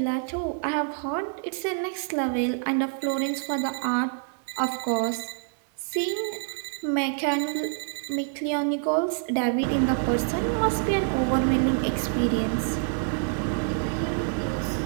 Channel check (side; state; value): left; silent; 60 dB below the other